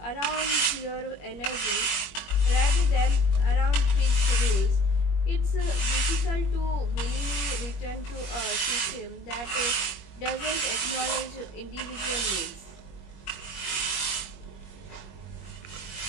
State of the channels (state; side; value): late; right; 21 ms